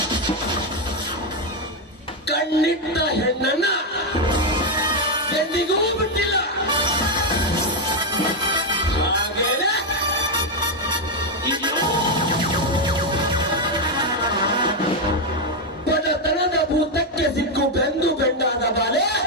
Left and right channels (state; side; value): normal; both; correlation 0.04